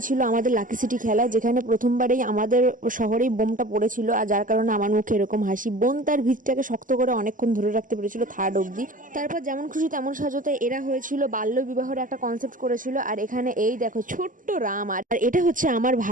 ছিল আমাদের লাকি সিটি খেলা, যেখানে প্রথমবারেই আমাদের শহরেই বোমটা পড়েছিল, আর যার কারণে আমার মুখে এরকম হাসি। বোন তার ভিতটাকে শক্ত করে অনেকক্ষণ ধরে রাখতে পেরেছিল, থার্ড অবধি। তারপর যেমন খুশি তেমন সাজাতে এরা হয়েছিল, বাল্য বিবাহের একটা কনসেপ্ট করেছিল। আর এখানে এই দেখো ছোট্ট রাম, আর এটা হচ্ছে আমার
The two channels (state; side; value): late; left; 0.38 ms